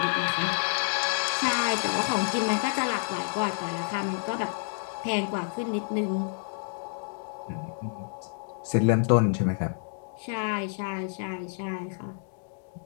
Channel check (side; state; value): right; silent; digital silence